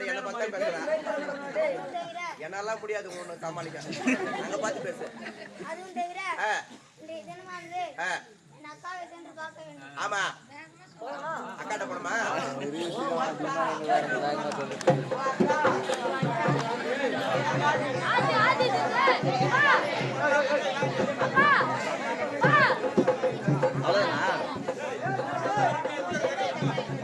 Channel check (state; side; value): identical; both; correlation 1.00